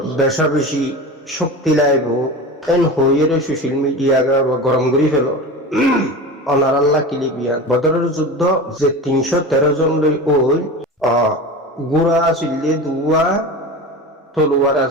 বেশা বেশি শক্তি লাইব এন হয়ে সোশ্যাল মিডিয়া গরম করে ফেল অনার আল্লাহ কিলিবিয়ান বদরের যুদ্ধ যে 313 জন লই ওই গুড়া আসিলে দুয়া তলোয়ার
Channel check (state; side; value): normal; both; correlation 0.30